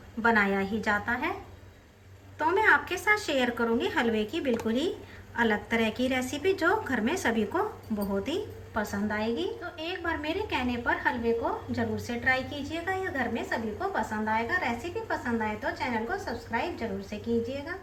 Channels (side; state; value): both; identical; correlation 1.00